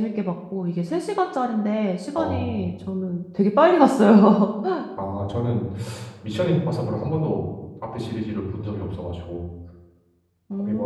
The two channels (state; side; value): identical; both; correlation 1.00